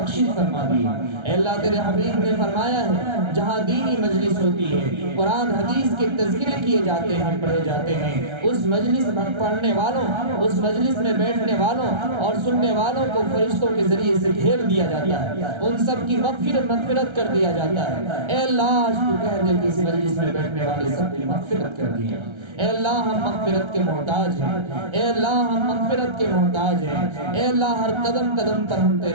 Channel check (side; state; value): left; late; 1.3 ms